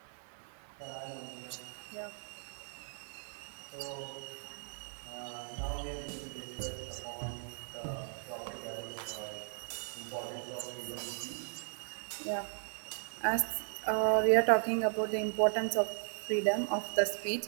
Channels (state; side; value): silent; left; 53 dB below the other